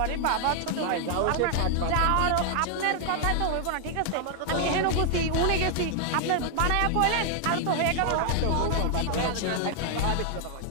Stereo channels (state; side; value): different; both; correlation 0.00